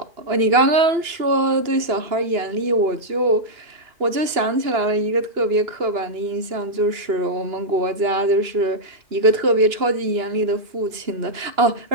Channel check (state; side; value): late; left; 2.9 ms